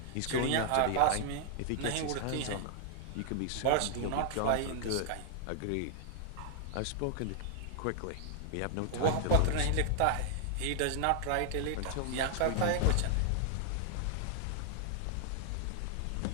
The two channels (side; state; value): both; different; correlation -0.01